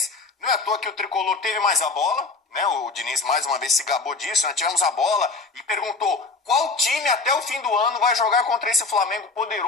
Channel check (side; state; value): right; quieter; 3.9 dB